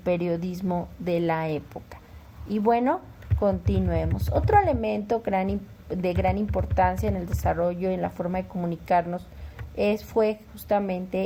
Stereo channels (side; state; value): both; identical; correlation 1.00